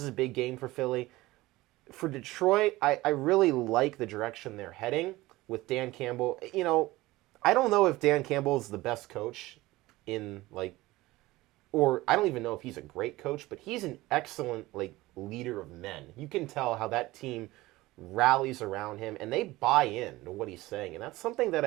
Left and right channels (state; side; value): quieter; left; 18.9 dB